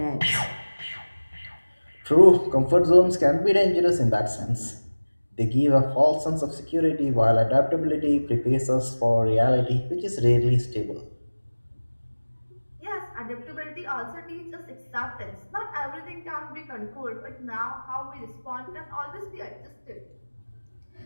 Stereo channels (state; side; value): inverted; both; correlation -1.00